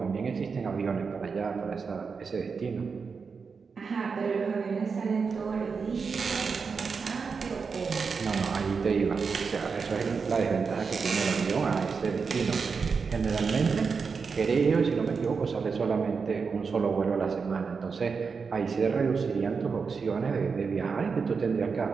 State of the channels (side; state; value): left; quieter; 5.3 dB